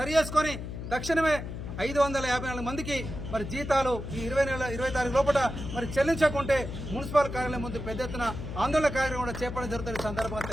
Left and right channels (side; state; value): left; noise; hum, 7 dB below the sound